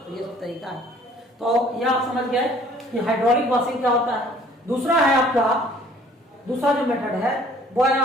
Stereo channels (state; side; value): normal; both; correlation 0.56